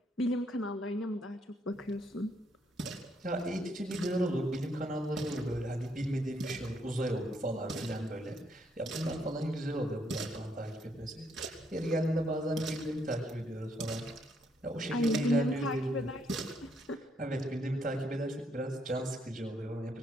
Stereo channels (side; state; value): both; normal; correlation 0.73